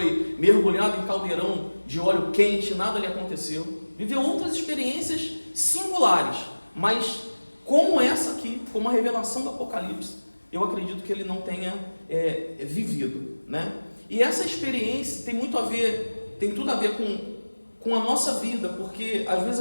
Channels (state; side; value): inverted; both; correlation -1.00